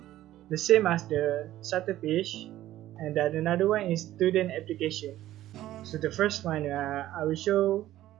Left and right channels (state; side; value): quieter; left; 14.1 dB